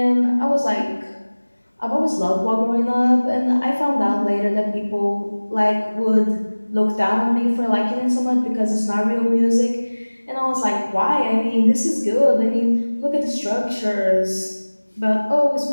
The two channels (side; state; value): both; inverted; correlation -1.00